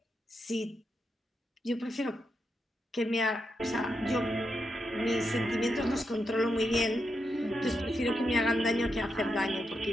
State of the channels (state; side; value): normal; both; correlation 0.84